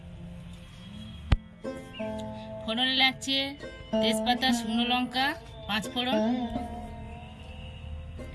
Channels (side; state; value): both; identical; correlation 1.00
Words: ফোড়নে লাগছে তেজপাতা, শুকনো লঙ্কা, 5 ফোড়ন,